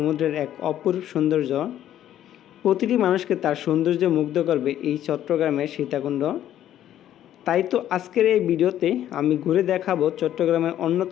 এক অপরূপ সৌন্দর্য। প্রতিটি মানুষকে তার সৌন্দর্যে মুগ্ধ করবে এই চট্টগ্রামের সীতাকুণ্ড। তাই তো আজকের এই ভিডিওতে আমি ঘুরে দেখাবো চট্টগ্রামের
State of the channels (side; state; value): right; quieter; 11.6 dB